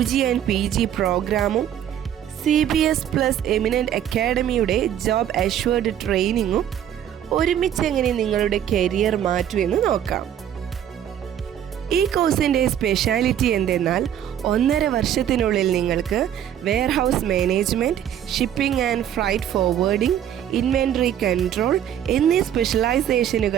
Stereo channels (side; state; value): left; quieter; 10.2 dB